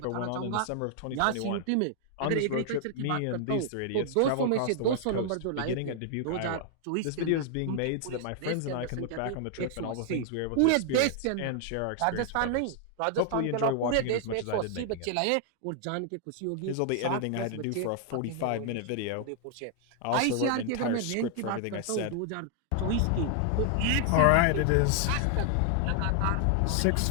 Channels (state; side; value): different; both; correlation 0.00